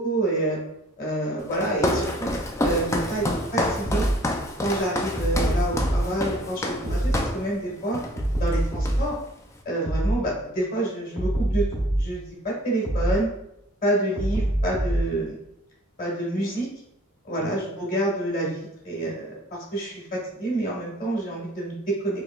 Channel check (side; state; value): both; normal; correlation 0.56